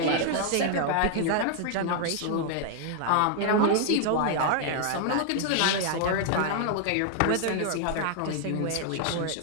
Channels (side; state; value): both; different; correlation 0.00